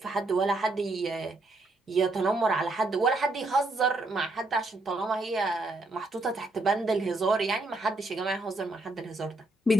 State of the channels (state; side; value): normal; both; correlation 0.76